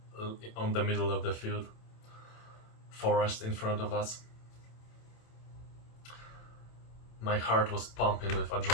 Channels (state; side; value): late; right; 27 ms